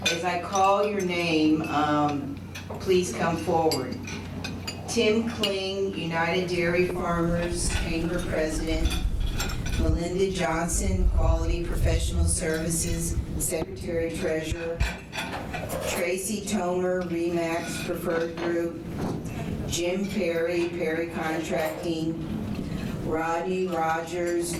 As I call your name, please come forward. Tim Kling, United Dairy Farmers Chamber President. Melinda Johnson, Quality Professional Services, Secretary Treasurer. Tracy Tomer, Remax Preferred Group. Jim Perry, Perry Contracting. Rodney Rogers,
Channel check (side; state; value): both; identical; correlation 1.00